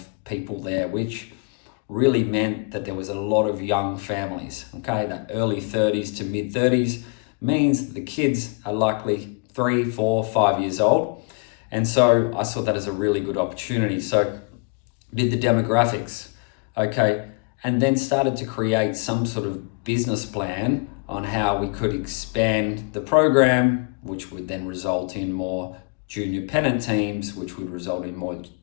people there, which really meant that there was a lot of young families. That early 30s to mid 30s means that the kids are likely 3, 4, 5 years old. And so I saw that as a really good opportunity. So did the demographics, and then started to create some sort of business plan on how we could expand the program, which would then result in more junior pennant teams, which would result in more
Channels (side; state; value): right; quieter; 32.6 dB